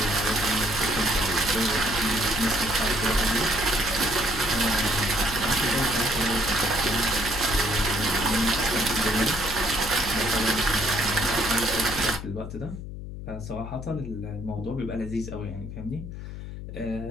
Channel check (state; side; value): noise; left; hum, 9 dB below the sound